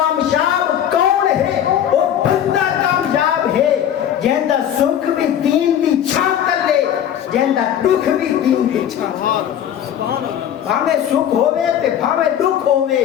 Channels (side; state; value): right; quieter; 10.1 dB